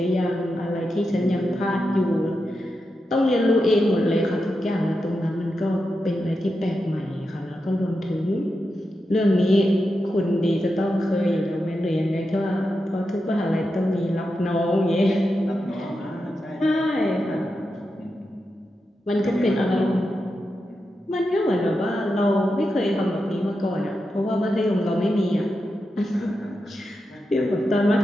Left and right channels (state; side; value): normal; both; correlation 0.88